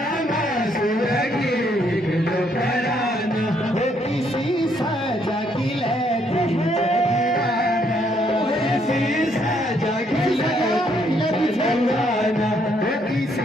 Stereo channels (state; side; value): normal; both; correlation 0.71